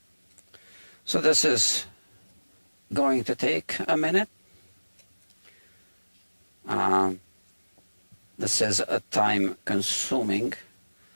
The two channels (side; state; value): both; inverted; correlation -1.00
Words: So this is going to take a minute. This is a time-consuming